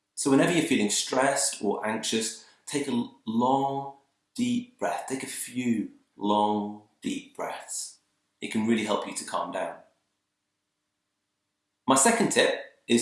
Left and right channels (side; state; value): both; identical; correlation 1.00